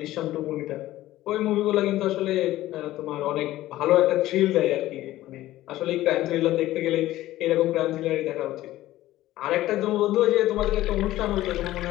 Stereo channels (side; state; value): right; quieter; 15.4 dB